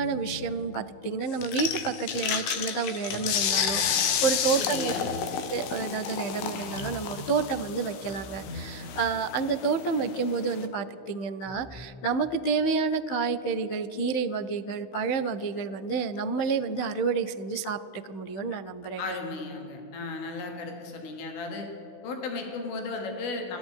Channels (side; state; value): right; late; 16 ms